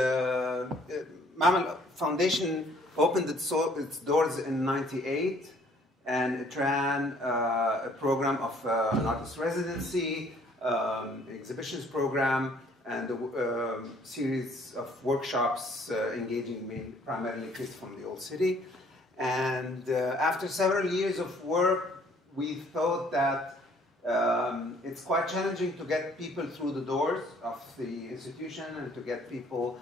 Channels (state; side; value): normal; both; correlation 0.60